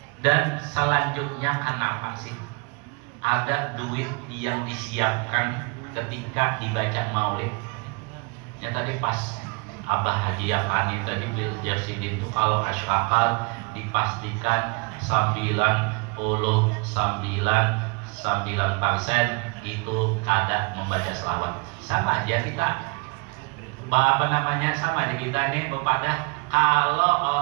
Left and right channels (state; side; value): quieter; left; 30.8 dB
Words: Dan selanjutnya, kenapa sih ada duit yang disiapkan ketika dibaca Maulid? Ya tadi pas Abah hadiahkan itu tadi bil Jasidin itu, kalau asyraqat dipastikan 99% itu kada membaca selawat. Sama aja kita, sama aja kita ini kepada kalau